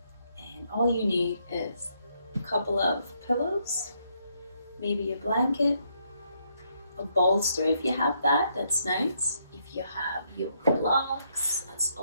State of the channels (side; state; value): both; inverted; correlation -0.75